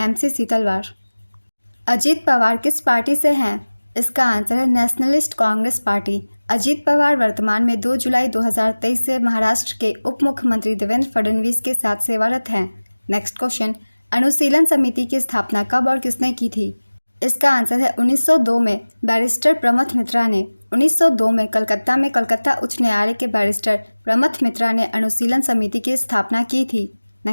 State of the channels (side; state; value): both; inverted; correlation -1.00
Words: सीतलवार। अजीत पवार किस पार्टी से हैं? इसका आंसर है नेशनलिस्ट कांग्रेस पार्टी। अजीत पवार वर्तमान में 2 जुलाई 2023 से महाराष्ट्र के उप मुख्यमंत्री देवेंद्र फडणवीस के साथ सेवारत हैं। नेक्स्ट क्वेश्चन, अनुशीलन समिति की स्थापना कब और किसने की थी? इसका आंसर है 1902 में बैरिस्टर प्रमथ मित्रा ने। 1902 में कलकत्ता उच्च न्यायालय के बैरिस्टर प्रमथ मित्रा ने अनुशीलन समिति की स्थापना की थी।